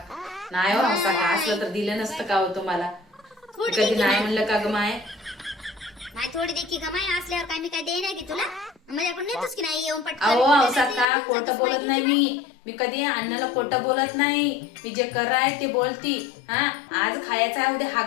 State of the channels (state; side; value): drops out; right; at 11.1 s